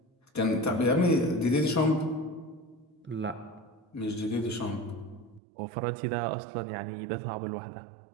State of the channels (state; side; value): drops out; left; at 5.4 s